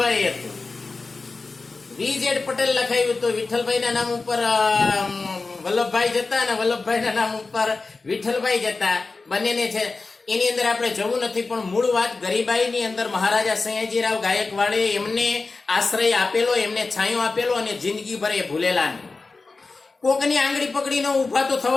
હતું. VZ પટેલ લખાયું તો વિઠ્ઠલભાઈના નામ ઉપર વલ્લભભાઈ જતા અને વલ્લભભાઈના નામ ઉપર વિઠ્ઠલભાઈ જતા બંનેને છે. એની અંદર આપણે જવું નથી, પણ મૂળ વાત ગરીબાઈની અંદર મહારાજા સયાજીરાવ ગાયકવાડે એમને આશ્રય આપેલો, એમને છાંયો આપેલો અને જિંદગીભર એ ભૂલેલા નહીં. કોકની આંગળી પકડીને ઊભા તો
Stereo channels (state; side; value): quieter; right; 3.9 dB